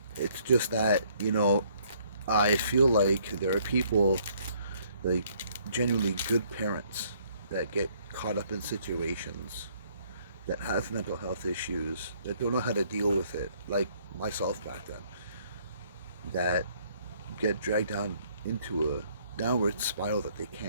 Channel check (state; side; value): inverted; both; correlation -0.64